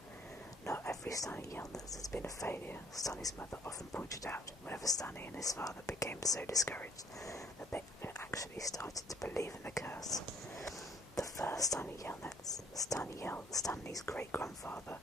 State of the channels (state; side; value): normal; both; correlation 0.61